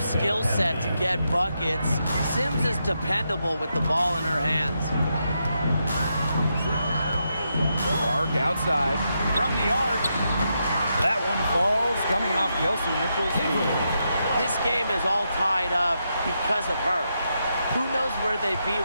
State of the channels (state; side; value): inverted; both; correlation -0.83